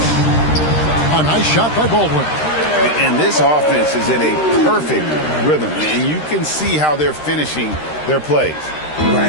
A nice shot by Baldwin. And this offense is in a perfect rhythm. And you can see how they're finishing their plays.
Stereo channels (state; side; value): late; right; 13 ms